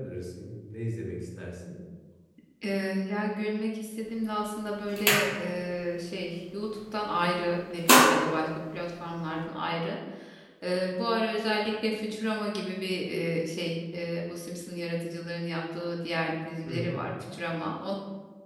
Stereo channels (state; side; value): identical; both; correlation 1.00